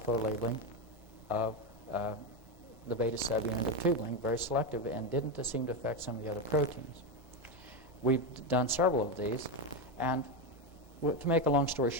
labeling of the beta subunit of tubulin, very selective, and didn't seem to affect some of the other proteins. We've done several of these, and to make a long story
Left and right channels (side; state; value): both; normal; correlation 0.11